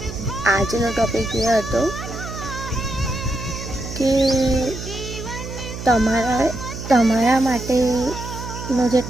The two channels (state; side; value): noise; right; hum, 9 dB below the sound